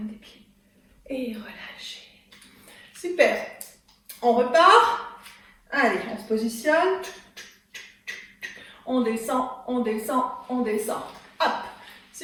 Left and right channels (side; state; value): both; identical; correlation 1.00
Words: des pieds. Et relâchez. Super. On repart. Allez, on se positionne. On descend, on descend, on descend. Hop.